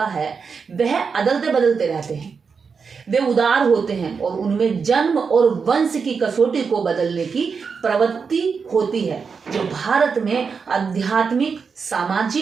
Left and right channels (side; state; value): left; quieter; 5.6 dB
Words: है वह अदलते बदलते रहते हैं। वे उदार होते हैं और उनमें जन्म और वंश की कसौटी को बदलने की प्रवृत्ति होती है, जो भारत में आध्यात्मिक,